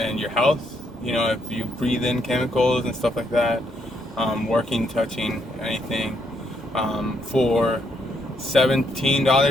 your health. If you breathe in chemicals and stuff like that, working, touching, anything, for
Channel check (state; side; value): normal; both; correlation 0.75